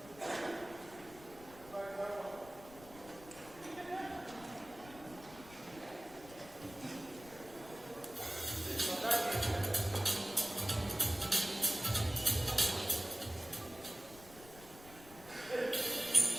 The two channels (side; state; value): left; noise; rumble, 19 dB below the sound